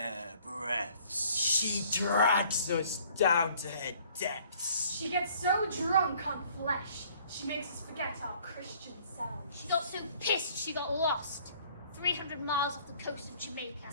breaths. She drags us down to her depths. She gets so drunk on flesh, she makes us forget our Christian selves. She got so pissed she got lost. 300 miles off the coast of Jamaica.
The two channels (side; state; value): both; inverted; correlation -0.58